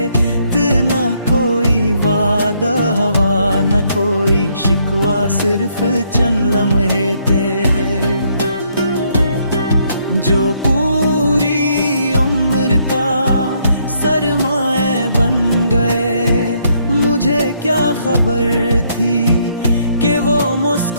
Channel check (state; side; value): inverted; both; correlation -0.71